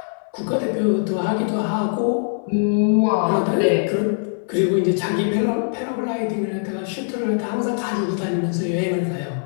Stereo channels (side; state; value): right; silent; digital silence